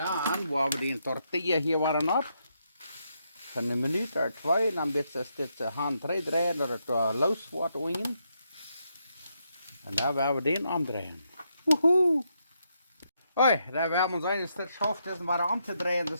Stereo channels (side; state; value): both; inverted; correlation -0.79